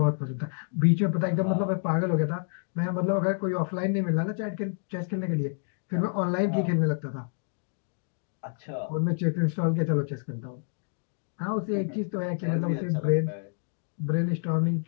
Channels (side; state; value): right; silent; digital silence